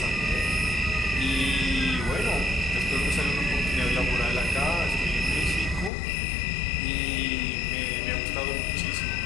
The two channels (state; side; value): drops out; right; at 5.9 s